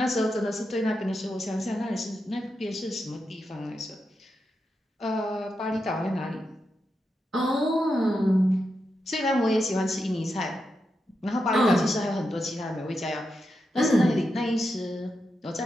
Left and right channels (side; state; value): both; normal; correlation 0.87